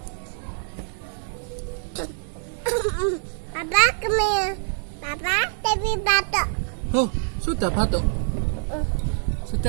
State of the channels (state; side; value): silent; left; digital silence